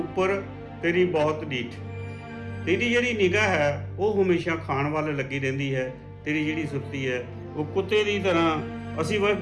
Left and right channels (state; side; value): identical; both; correlation 1.00